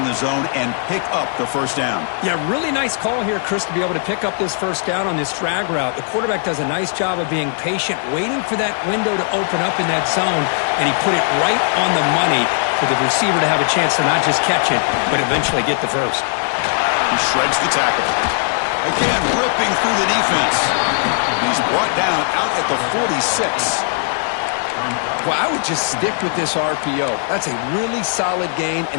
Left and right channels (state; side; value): silent; right; 62 dB below the other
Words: the zone and pick up the first down. Yeah, really nice call here, Chris, to be able to pick up this first down on this drag route. The quarterback does a nice job of being patient, waiting for that window to open up in that zone, and he put it right on the money for the receiver to have a chance to not just catch it, but eventually get the first. He shreds the tackle. Again, ripping through the defense. He's brought down out at the 46. Well, I would just stick with this RPO. That's a really solid gain,